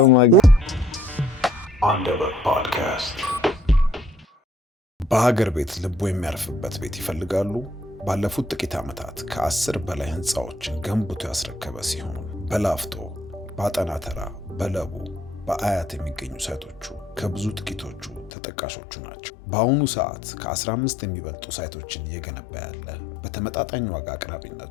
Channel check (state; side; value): drops out; right; at 18.3 s